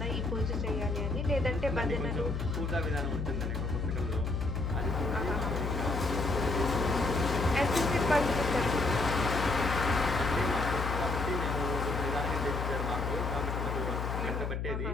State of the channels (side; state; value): left; noise; hum, 2 dB below the sound